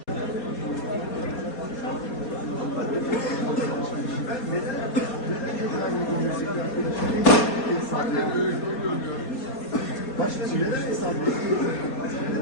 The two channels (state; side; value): late; right; 4.2 ms